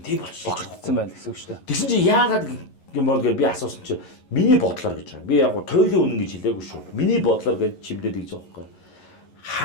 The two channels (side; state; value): right; late; 11 ms